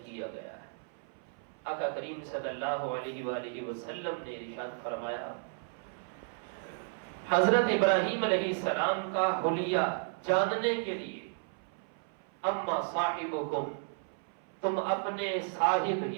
کیا گیا ہے۔ آقا کریم صلی اللہ علیہ وآلہ وسلم نے ارشاد فرمایا، حضرت ابراہیم علیہ السلام کا حلیہ جاننے کے لیے اما صاحبکم، تم اپنے صاحب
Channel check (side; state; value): left; silent; 56 dB below the other